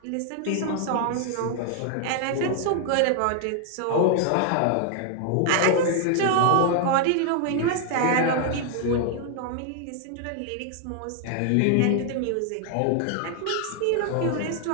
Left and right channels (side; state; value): both; different; correlation 0.00